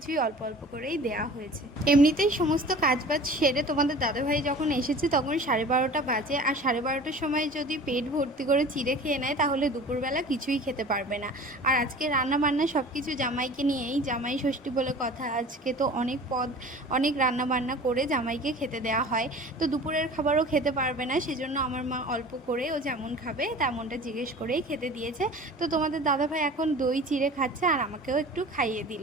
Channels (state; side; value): normal; both; correlation 0.42